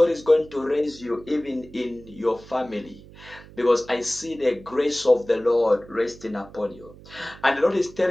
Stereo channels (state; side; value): noise; right; hum, 20 dB below the sound